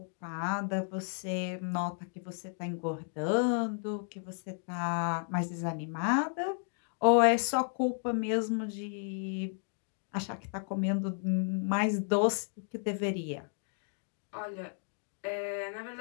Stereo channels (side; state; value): right; silent; 56 dB below the other